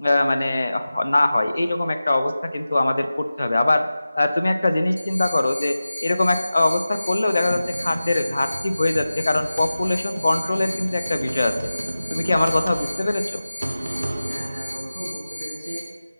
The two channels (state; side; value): inverted; both; correlation -0.96